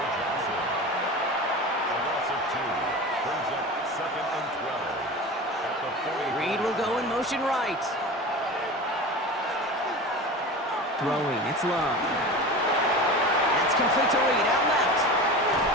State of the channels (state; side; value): normal; both; correlation 0.31